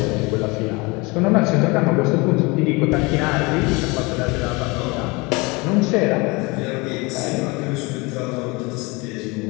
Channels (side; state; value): right; quieter; 25.9 dB